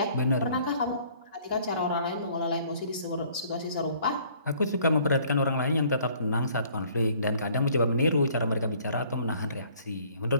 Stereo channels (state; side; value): inverted; both; correlation -0.58